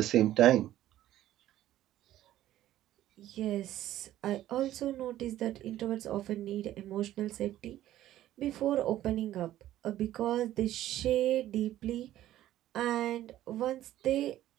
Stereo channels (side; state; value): left; quieter; 13.4 dB